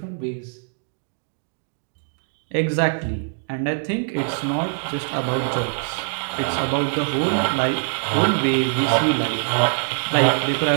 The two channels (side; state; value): left; silent; 63 dB below the other